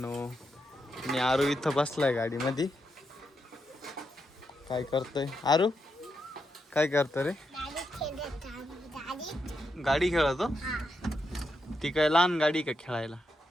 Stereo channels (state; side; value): normal; both; correlation 0.84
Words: मी आरू इथं बसलाय गाडीमध्ये. काय करतोय आरू? काय करतो रे? गाडी खेळतो? ती काय लहान गाडी का खेळायला?